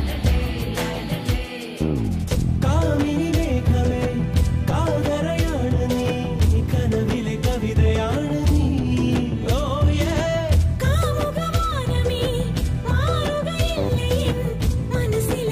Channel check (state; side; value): identical; both; correlation 1.00